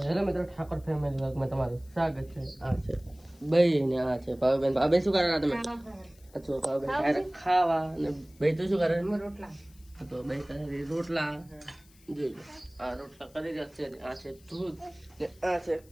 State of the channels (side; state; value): left; noise; hiss, 28 dB below the sound